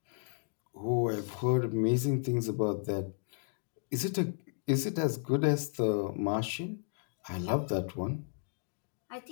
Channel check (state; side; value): silent; right; digital silence